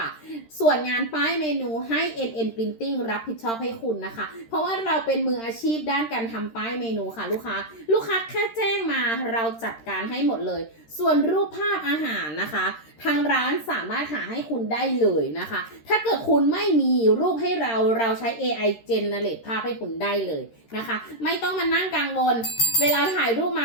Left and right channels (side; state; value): right; late; 13 ms